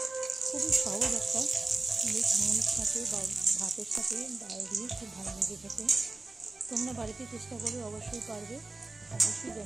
খুবই সহজ একটা, বেশ মুড়ির সাথে বা ভাতের সাথে ডাল দিয়ে খুব ভালো লাগে খেতে। তোমরা বাড়িতে চেষ্টা করে অবশ্যই পারবে, অবশ্যই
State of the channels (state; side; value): quieter; left; 3.3 dB